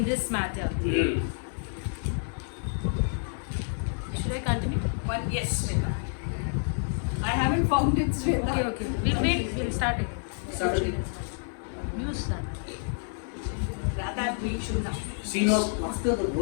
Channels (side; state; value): right; silent; 59 dB below the other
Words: this matter. Should I continue? One, yes, Shweta. I haven't found it, Shweta. Okay. We'll wait. We'll start it. Start again. You start. Rather, we should have. See now, after the